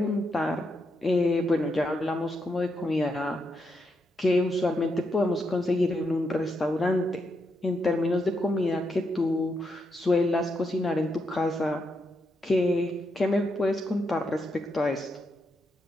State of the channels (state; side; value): normal; both; correlation 0.82